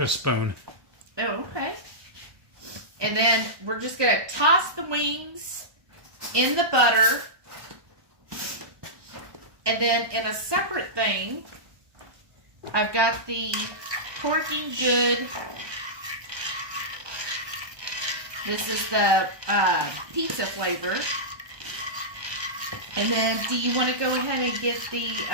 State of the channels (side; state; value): left; late; 1.2 ms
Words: spoon. Oh, okay. And then we're just going to toss the wings in the butter. And then in a separate thing, I've got the Porking Good. This is the pizza flavor. And then do you want to go ahead and get the